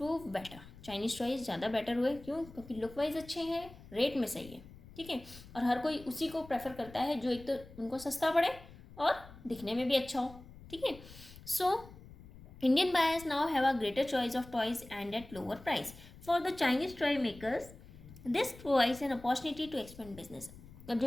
better. Chinese choice ज़्यादा बेटर हुए। क्यों? क्योंकि लुक वाइज अच्छे हैं, रेट में सही है, ठीक है, और हर कोई उसी को प्रेफर करता है जो एक तो उनको सस्ता पड़े और दिखने में भी अच्छा हो, ठीक है। सो Indian buyers now have a greater choice of toys and at lower price. For the Chinese toy makers, this provides an opportunity to expand business. अब जो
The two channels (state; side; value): noise; left; rumble, 19 dB below the sound